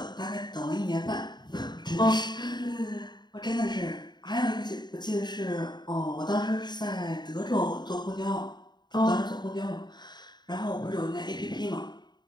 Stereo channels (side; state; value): right; late; 0.21 ms